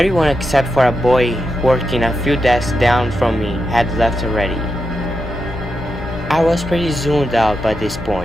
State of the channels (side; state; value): both; normal; correlation 0.87